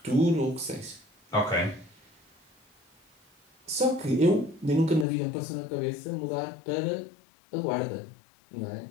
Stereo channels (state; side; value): drops out; right; at 5.1 s